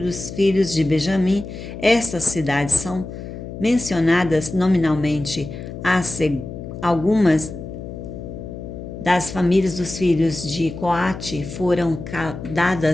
filhos de Benjamim. Estas cidades são mencionadas nominalmente. Algumas das famílias dos filhos de Coate foram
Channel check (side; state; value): left; noise; hum, 10 dB below the sound